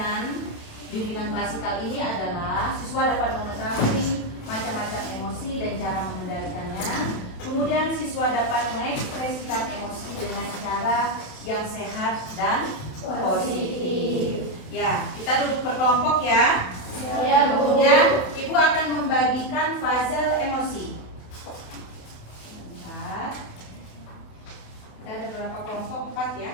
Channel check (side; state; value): right; late; 28 ms